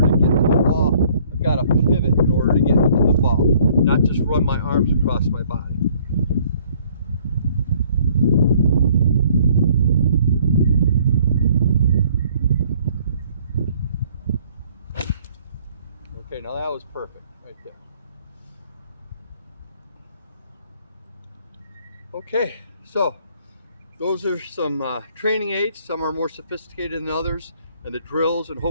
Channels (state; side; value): inverted; both; correlation -0.60